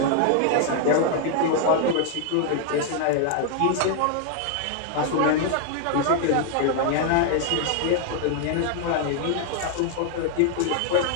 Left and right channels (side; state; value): both; different; correlation 0.00